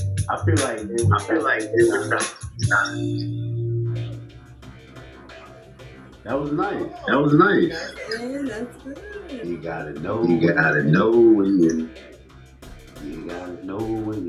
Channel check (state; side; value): identical; both; correlation 1.00